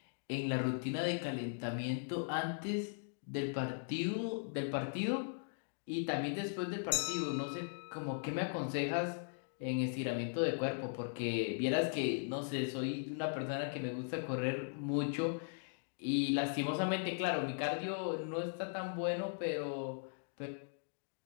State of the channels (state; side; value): silent; right; digital silence